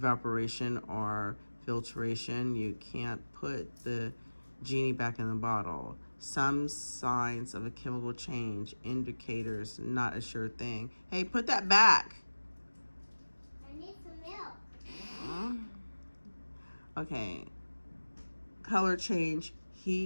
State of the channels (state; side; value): inverted; both; correlation -1.00